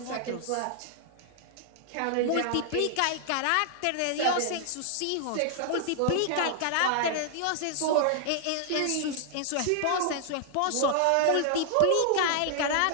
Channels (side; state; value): both; different; correlation 0.00